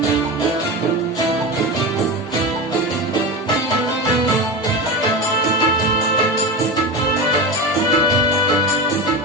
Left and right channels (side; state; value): both; normal; correlation 0.23